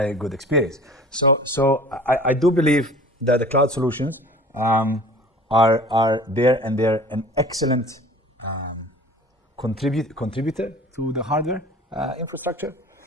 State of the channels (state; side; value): normal; both; correlation 0.44